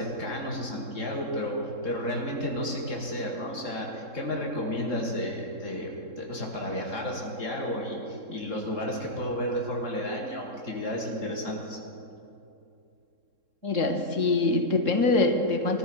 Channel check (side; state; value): left; late; 3.7 ms